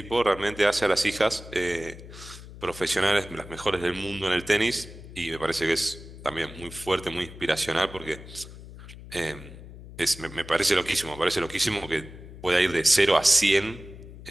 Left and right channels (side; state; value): left; noise; hum, 15 dB below the sound